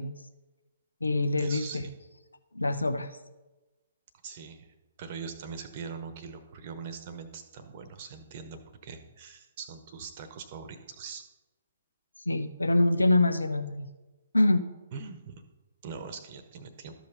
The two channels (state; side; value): inverted; both; correlation -0.89